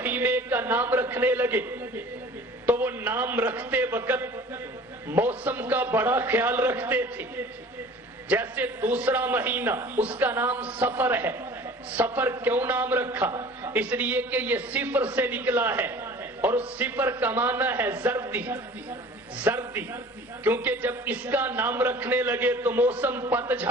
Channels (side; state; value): both; normal; correlation 0.45